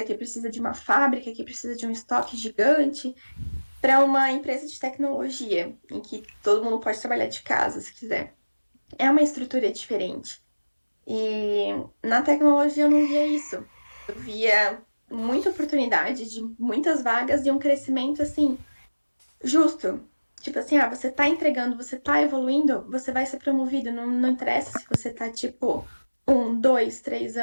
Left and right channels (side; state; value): both; inverted; correlation -1.00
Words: que precisa de uma fábrica, que precisa de um estoque gigante, para uma empresa de tecnologia, em que todo mundo pode trabalhar de casa, se quiser. é uma estrutura diferente. E na tecnologia eu não via isso. Eu via muita oportunidade de muitas vagas e um crescimento assim justo. Tipo assim, você tá entregando, você tá evoluindo, você vai ser promovido. Não interessa se você tá, tipo, 1, 2, 3